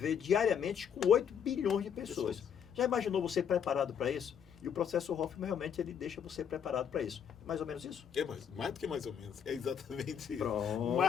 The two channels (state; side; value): quieter; right; 7.9 dB